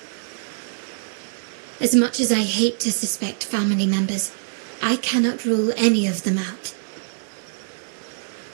As much as I hate to suspect family members, I cannot rule any of them out.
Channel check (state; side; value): silent; left; digital silence